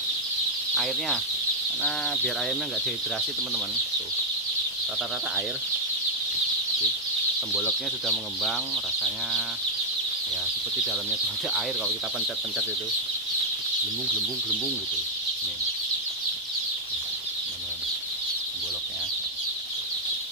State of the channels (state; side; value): normal; both; correlation -0.01